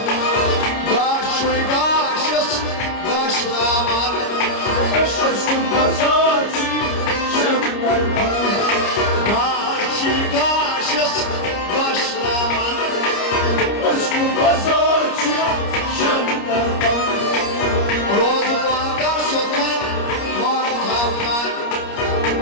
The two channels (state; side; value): late; right; 29 ms